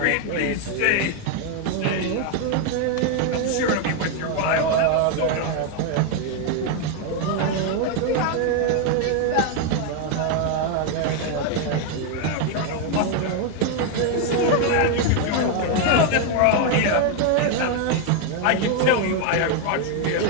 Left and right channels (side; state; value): both; different; correlation 0.01